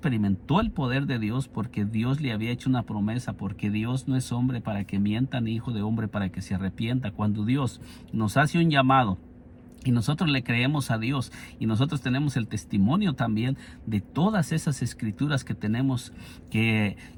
el poder de Dios porque Dios le había hecho una promesa, porque Dios no es hombre para que mienta, ni hijo de hombre para que se arrepienta. Cuando Dios nos hace un llamado y nosotros le creemos a Dios, y nosotros tenemos el testimonio también de todas esas escrituras que tenemos, que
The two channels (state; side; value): identical; both; correlation 1.00